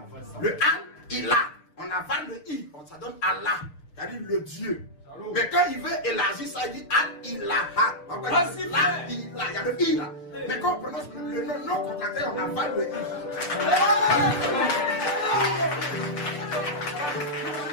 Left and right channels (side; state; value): right; late; 6.7 ms